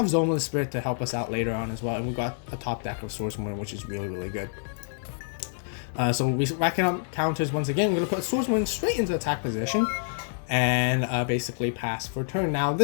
Zoma the Spirit to help us out later on as well. And we got a top deck of Swordswoman, which is really good. So we racking up counters once again. We're going to put Swordswoman straight into attack position and basically pass for turn. Now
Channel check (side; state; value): right; silent; digital silence